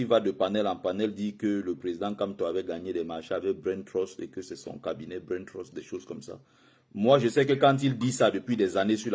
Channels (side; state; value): both; identical; correlation 1.00